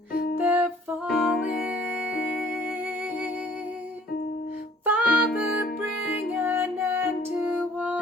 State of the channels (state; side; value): normal; both; correlation 0.56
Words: they're falling. Father, bring an end to